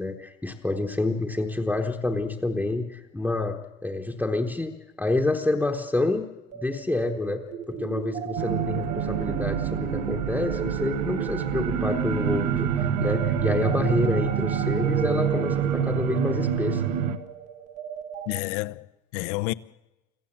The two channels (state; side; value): normal; both; correlation 0.50